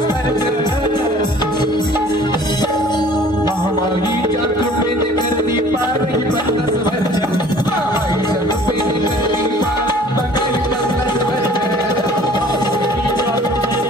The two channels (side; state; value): both; normal; correlation 0.51